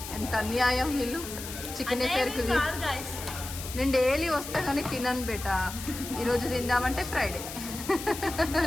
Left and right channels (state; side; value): noise; left; hiss, 10 dB below the sound